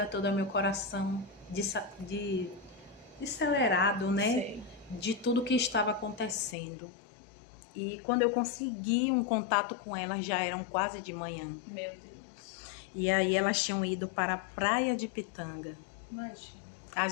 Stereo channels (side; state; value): right; drops out; at 6.6 s